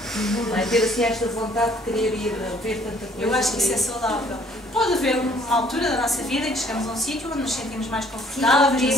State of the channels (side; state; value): both; normal; correlation 0.60